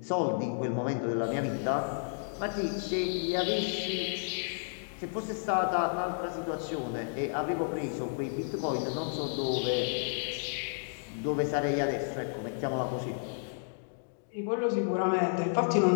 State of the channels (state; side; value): silent; right; digital silence